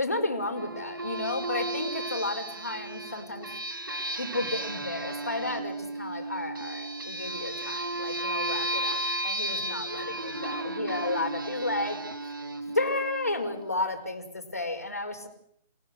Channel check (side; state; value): both; inverted; correlation -0.40